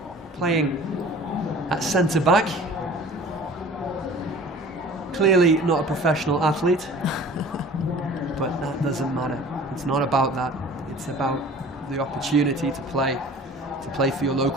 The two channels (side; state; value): both; normal; correlation 0.45